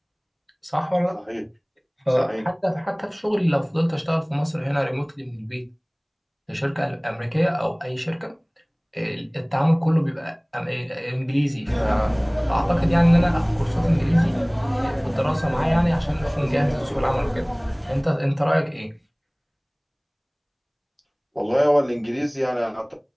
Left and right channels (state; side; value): identical; both; correlation 1.00